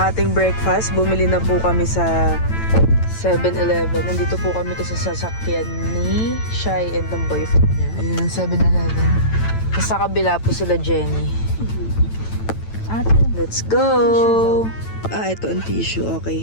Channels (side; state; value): right; late; 9.0 ms